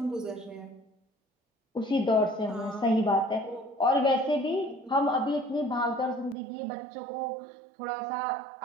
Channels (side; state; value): left; drops out; at 6.4 s